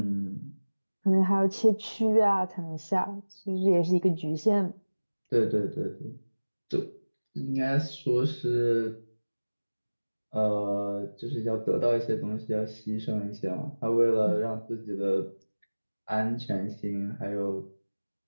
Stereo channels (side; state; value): both; inverted; correlation -1.00